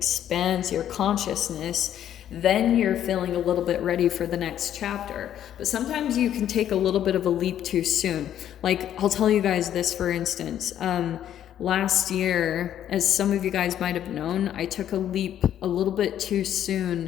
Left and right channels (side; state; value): right; quieter; 10.7 dB